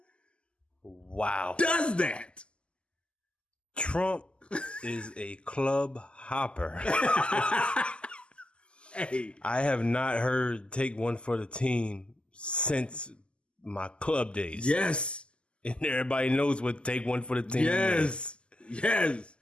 Wow. does that? Trump is a club hopper. Hey, I have not heard take one for the team since my club days. yes, And everybody knows what take one for the team is. yes.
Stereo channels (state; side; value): late; right; 0.051 ms